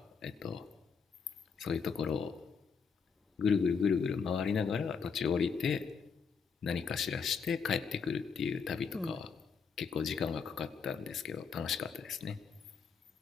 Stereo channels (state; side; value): quieter; right; 5.9 dB